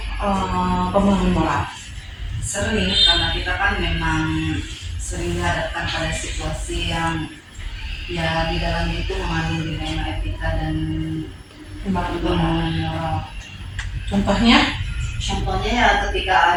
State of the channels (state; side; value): identical; both; correlation 1.00